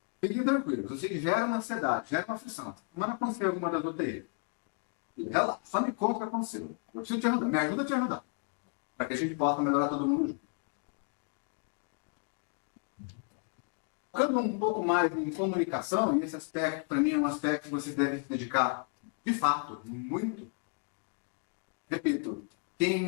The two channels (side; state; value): right; quieter; 38.6 dB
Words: fiquem tranquilos. Isso gera uma ansiedade, gera uma aflição. Essa semana aconteceu alguma das UTI. Relaxa, só me conta o que aconteceu. Eu preciso te ajudar. Me ajuda a te ajudar. Para que a gente possa melhorar todo mundo junto. Focando um pouco mais em comunicação, e esse aspecto, para mim, é um aspecto que vocês devem se dedicar, de fato, muito. Repito,